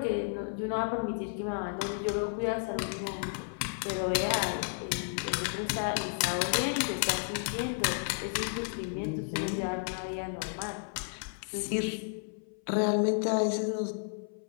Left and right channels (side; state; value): right; silent; 56 dB below the other